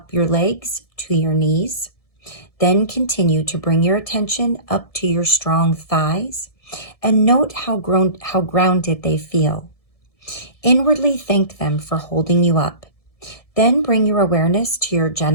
your legs to your knees. Then continue to bring your attention up to your strong thighs and note how grounded they feel. Inwardly thank them for holding you up. Then bring your awareness to your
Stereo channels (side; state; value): right; late; 1.7 ms